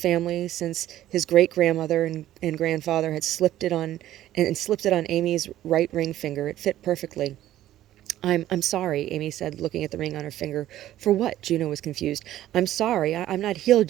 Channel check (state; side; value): quieter; left; 13.4 dB